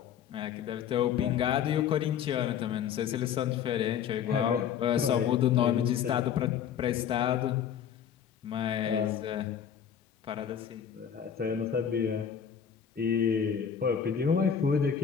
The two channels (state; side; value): quieter; right; 8.2 dB